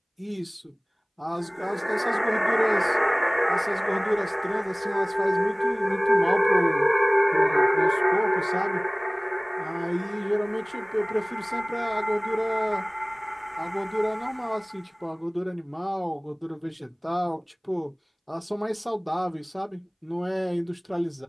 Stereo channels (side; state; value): both; identical; correlation 1.00